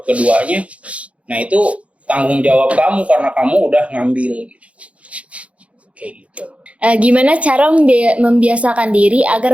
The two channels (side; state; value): left; late; 0.063 ms